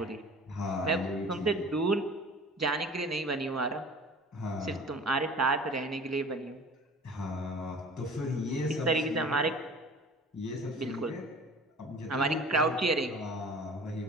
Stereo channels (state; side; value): normal; both; correlation 0.44